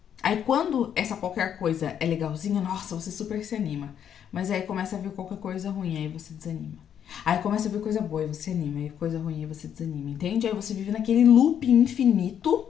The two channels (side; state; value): right; quieter; 9.0 dB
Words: Aí quando essa qualquer coisa é legalzinha, nossa, você super se anima. Mas aí começa a vir qualquer coisa ruim, aí você desanima. Aí começa a vir coisa boa, aí você anima. Aí coisa ruim, aí você desanima, entende? Aí você vive naquele loop infinito